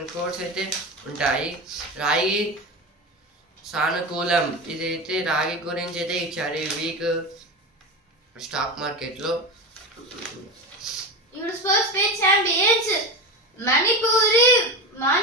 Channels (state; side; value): normal; both; correlation 0.22